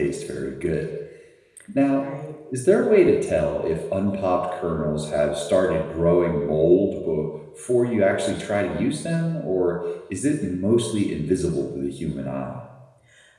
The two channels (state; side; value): identical; both; correlation 1.00